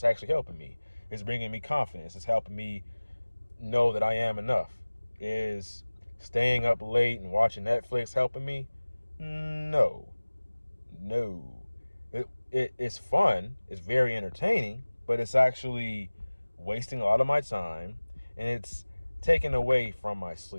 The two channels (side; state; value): both; inverted; correlation -1.00